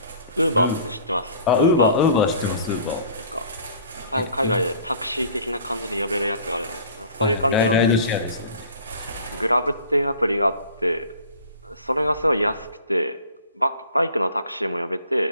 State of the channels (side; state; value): both; inverted; correlation -0.48